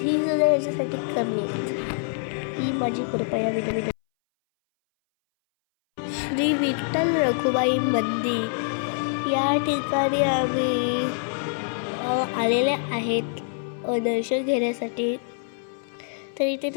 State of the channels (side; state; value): right; silent; 60 dB below the other